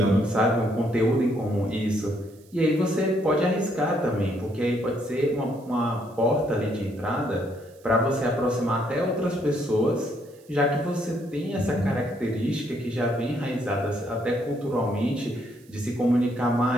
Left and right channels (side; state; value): right; noise; hiss, 29 dB below the sound